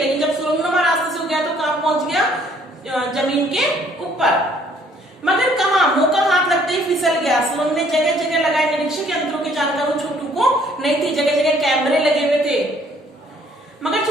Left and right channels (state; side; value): normal; both; correlation 0.62